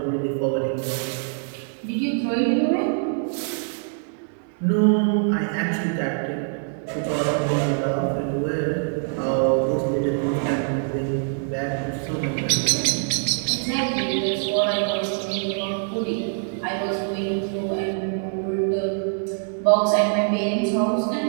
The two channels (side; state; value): left; silent; 61 dB below the other